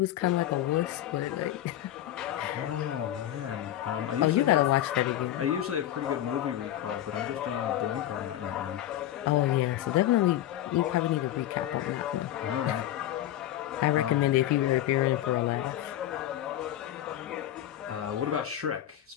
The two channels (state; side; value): quieter; right; 12.7 dB